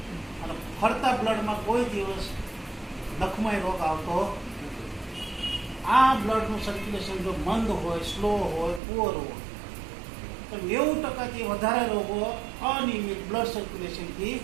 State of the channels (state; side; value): drops out; left; at 8.8 s